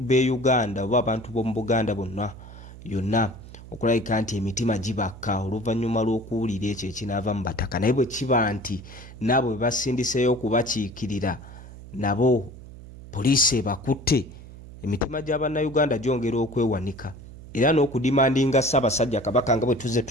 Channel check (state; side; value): noise; right; hum, 16 dB below the sound